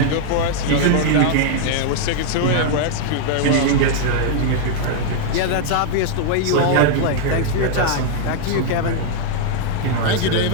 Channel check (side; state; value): both; different; correlation -0.01